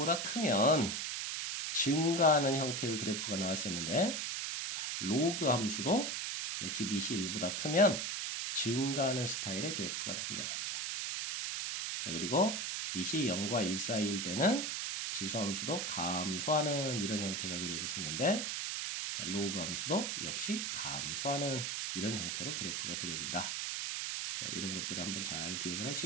크면 증가하는 형태의 그래프가 나왔었는데 자, 로그 함수도 역시 밑이 1보다 크면 증가하는 스타일의 그래프가 등장합니다. 자, 그리고 밑이 0과 1 사이일 때는 지수함수도 감소하는 이런 형태가 그려졌었는데 자, 로그 함수도 역시 감소하는 이런 형태로 그래프가 그려진다. 자, 이런 것들을 한번 잘 기억을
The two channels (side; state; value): right; noise; hiss, 2 dB below the sound